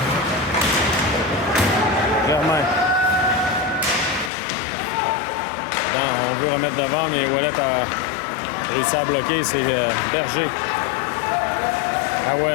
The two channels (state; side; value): drops out; right; at 4.3 s